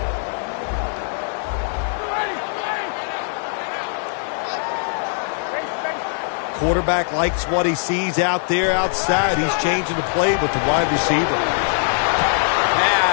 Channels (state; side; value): silent; right; 65 dB below the other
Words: Quarterback likes what he sees out there outside. He's changing the play with the wide receiver.